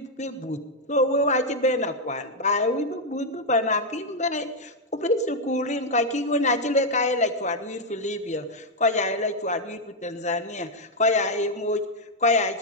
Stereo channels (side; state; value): both; normal; correlation 0.00